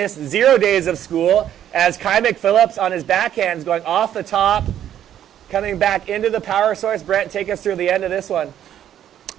0 days of school as Kai McPhillips on his backhands going off the top, coming back into the power source. Brent, take us through the end of this one.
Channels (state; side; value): quieter; left; 10.7 dB